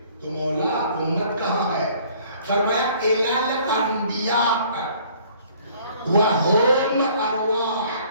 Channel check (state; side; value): inverted; both; correlation -0.56